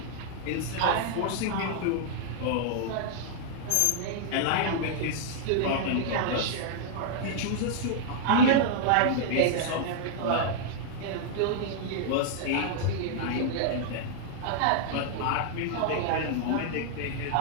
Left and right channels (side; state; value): both; different; correlation -0.01